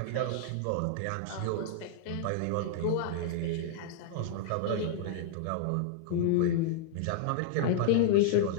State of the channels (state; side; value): different; both; correlation -0.01